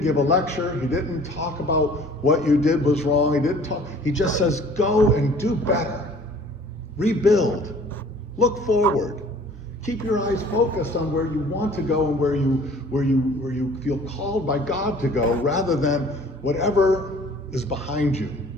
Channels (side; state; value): both; normal; correlation 0.51